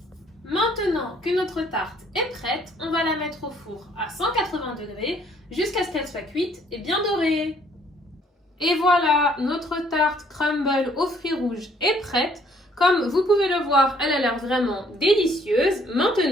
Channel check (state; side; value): normal; both; correlation 0.63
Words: Maintenant que notre tarte est prête, on va la mettre au four à 180 degrés jusqu'à ce qu'elle soit cuite et bien dorée. Et voilà, notre tarte crumble aux fruits rouges est prête. Comme vous pouvez le voir, elle a l'air vraiment délicieuse.